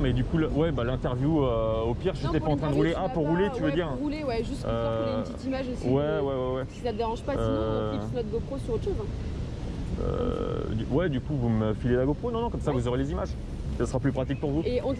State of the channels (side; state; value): both; identical; correlation 1.00